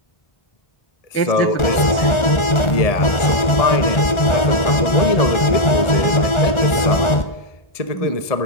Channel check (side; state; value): right; late; 1.4 ms